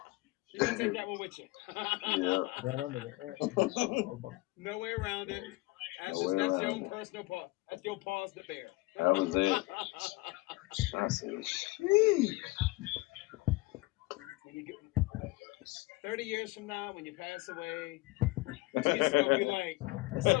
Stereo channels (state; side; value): quieter; right; 21.9 dB